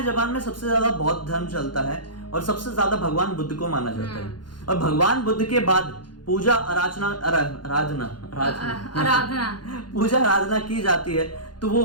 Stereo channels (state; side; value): late; right; 0.71 ms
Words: जापान में सबसे ज्यादा बौद्ध धर्म चलता है और सबसे ज्यादा भगवान बुद्ध को माना जाता है। और भगवान बुद्ध के बाद पूजा आराधना पूजा आराधना की जाती है तो वो